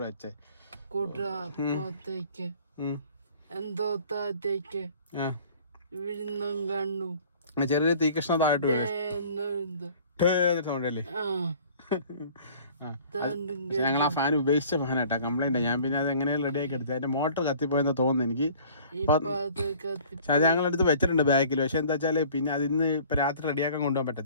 വെച്ചത്. ചെറിയ തീകഷ്ണ താഴോട്ട് സൗണ്ടല്ലേ. ഞങ്ങൾ ആ ഫാൻ ഉപേക്ഷിച്ച ഫാനാട്ടാ, കംപ്ലൈന്റ്. ഞാൻ പിന്നെ അത് എങ്ങനെയും റെഡിയാക്കി എടുത്തത്. അതിന്റെ മോട്ടർ കത്തിപ്പോയെന്ന് തോന്നുന്നു എനിക്ക്. ഞങ്ങൾ എടുത്ത് വെച്ചിട്ടുണ്ട് ബാക്കിൽ. പക്ഷെ എന്താ വെച്ചാൽ പിന്നെ അതിന്ന് ഇപ്പൊ രാത്രി റെഡിയാക്കാൻ കൊണ്ടുപോകാൻ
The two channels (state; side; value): inverted; both; correlation -0.50